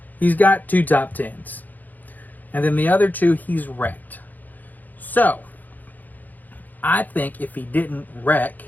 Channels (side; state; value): right; late; 0.084 ms